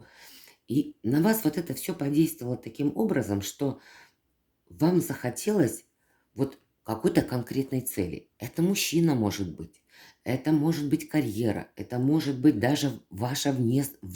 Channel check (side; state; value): both; identical; correlation 1.00